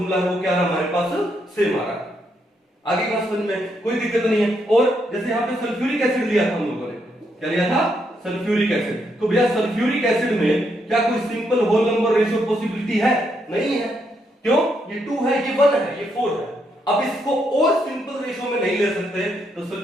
है वो क्या रहा हमारे पास, सेम आ रहा है। आगे बात समझ में कोई दिक्कत नहीं है। और जैसे यहां पे सल्फ्यूरिक एसिड लिया था हम लोगों ने, क्या लिया था, सल्फ्यूरिक एसिड। तो भैया सल्फ्यूरिक एसिड में क्या कोई simple whole number ratio possibility है, नहीं है। क्यों, ये 2 है, ये 1 है, ये 4 है। अब इसको और सिंपल रेशियो में नहीं ले सकते, तो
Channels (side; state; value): both; normal; correlation 0.77